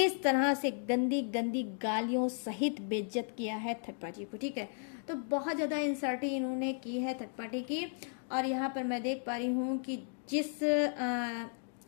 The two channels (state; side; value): silent; right; 55 dB below the other